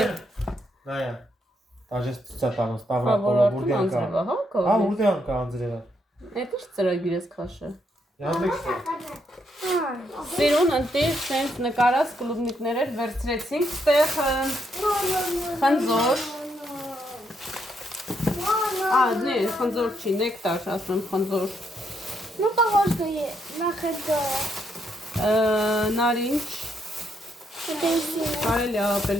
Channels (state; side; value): normal; both; correlation 0.76